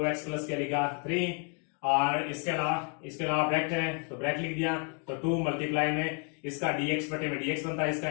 प्लस क्या लिखा 3, और इसके अलावा ब्रैकेट है तो ब्रैकेट लिख दिया, तो 2 मल्टीप्लाई में इसका dx बटे में dx बनता है, इसका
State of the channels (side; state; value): right; quieter; 39.6 dB